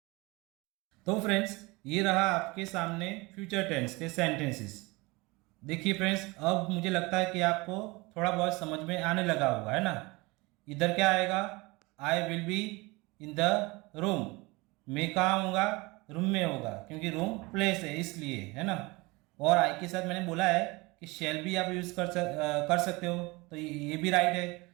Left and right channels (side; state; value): left; quieter; 24.1 dB